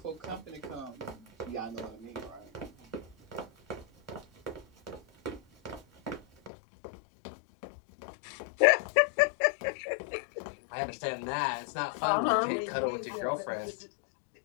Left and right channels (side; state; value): right; drops out; at 6.5 s